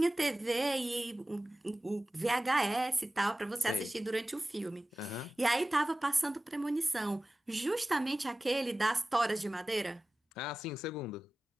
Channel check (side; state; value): both; normal; correlation 0.97